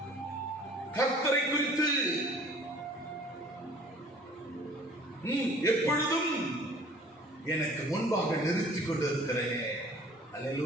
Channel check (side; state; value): both; normal; correlation 0.51